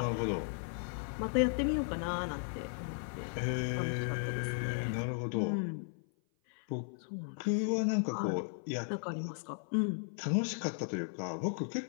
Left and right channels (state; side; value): silent; right; 54 dB below the other